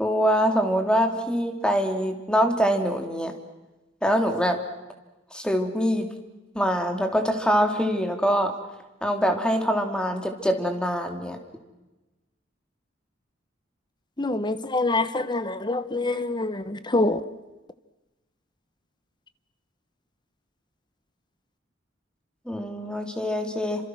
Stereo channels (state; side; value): normal; both; correlation 0.70